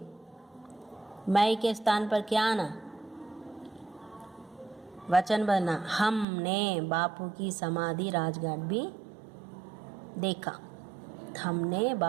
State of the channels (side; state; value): left; drops out; at 6.2 s